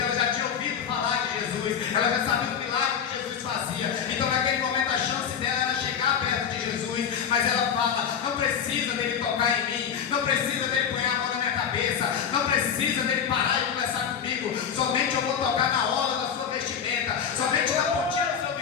ela já tinha ouvido falar de Jesus, ela já sabia o milagre que Jesus fazia, então naquele momento a chance dela era chegar perto de Jesus, mas ela fala, não precisa dele tocar em mim, não precisa dele pôr a mão na minha cabeça, não precisa dele parar e conversar comigo, somente eu vou tocar na orla da sua vestimenta, somente na pontinha do seu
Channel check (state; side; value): quieter; right; 7.7 dB